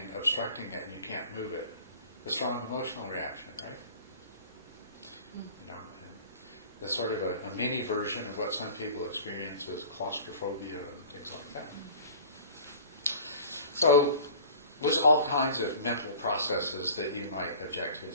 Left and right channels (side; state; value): both; inverted; correlation -0.44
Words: obstructing it and you can't move it? A strong emotional reaction, right? You know, and that's sort of a mini version of what some people experience as claustrophobia and things like that. So there's all kinds of mental processes that you might object to and